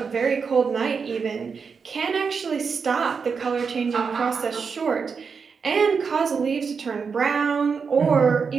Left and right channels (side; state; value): left; quieter; 5.6 dB